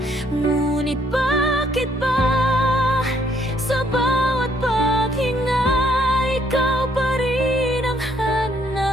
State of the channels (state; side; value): normal; both; correlation 0.68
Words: ngunit bakit ba sa bawat paghinga ikaw pa rin ang